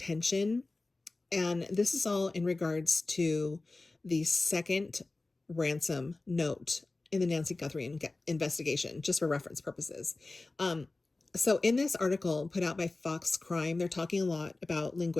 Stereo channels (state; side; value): quieter; right; 3.3 dB